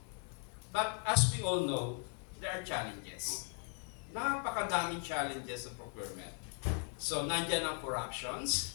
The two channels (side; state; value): right; quieter; 36.4 dB